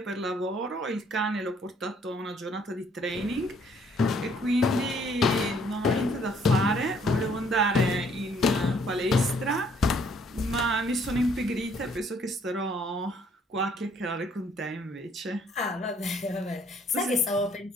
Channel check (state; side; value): normal; both; correlation 0.64